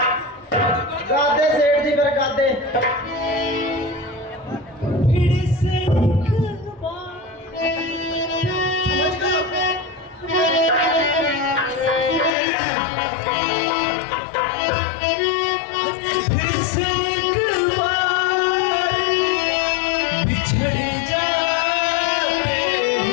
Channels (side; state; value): right; drops out; at 12.3 s